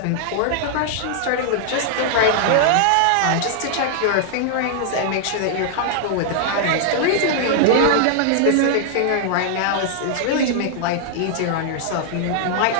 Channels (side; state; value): both; different; correlation -0.01